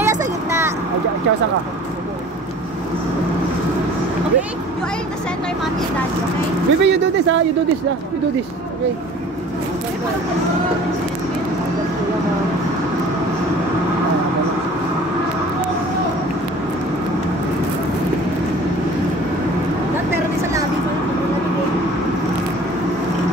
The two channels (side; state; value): both; normal; correlation 0.46